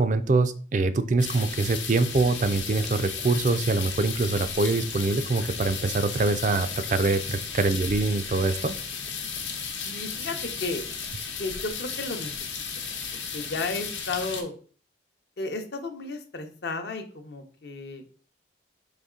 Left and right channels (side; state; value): both; normal; correlation 0.53